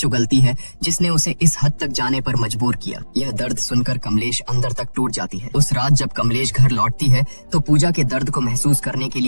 उगलती है जिसने उसे इस हद तक जाने पर मजबूर किया। यह दर्द सुनकर कमलेश अंदर तक टूट जाती है। उस रात जब कमलेश घर लौटती है तो पूजा के दर्द को महसूस करने के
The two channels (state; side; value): inverted; both; correlation -1.00